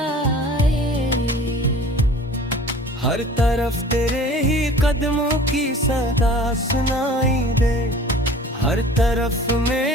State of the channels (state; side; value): normal; both; correlation 0.45